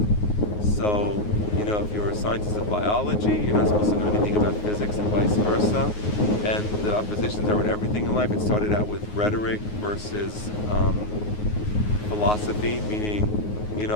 So, if you're a scientist of biology, you're not supposed to know anything about physics and vice versa. And the oppositions are in everything in life. It started out with rhetoric versus philosophy, meaning,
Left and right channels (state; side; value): late; right; 9.5 ms